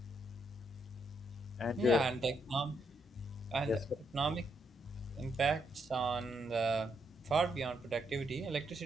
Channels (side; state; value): both; normal; correlation 0.77